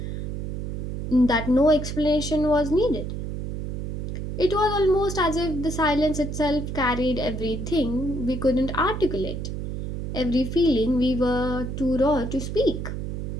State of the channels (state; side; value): noise; right; hum, 4 dB below the sound